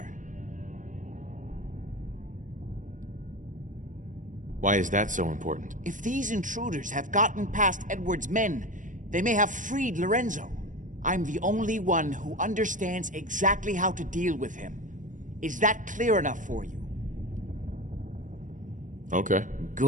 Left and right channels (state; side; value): late; left; 0.37 ms